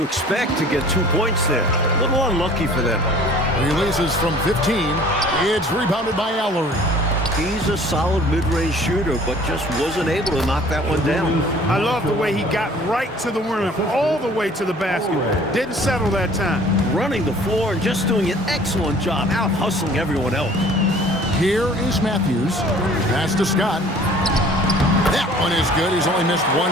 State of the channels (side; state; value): both; normal; correlation 0.51